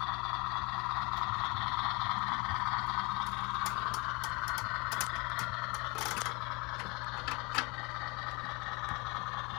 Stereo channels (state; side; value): quieter; right; 27.2 dB